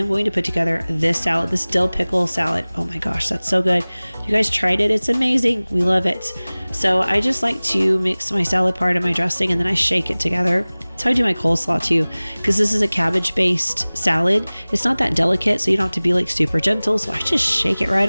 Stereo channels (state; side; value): inverted; both; correlation -1.00